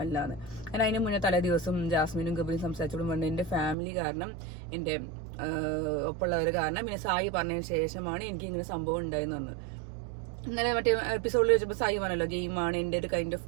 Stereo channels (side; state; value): left; drops out; at 3.8 s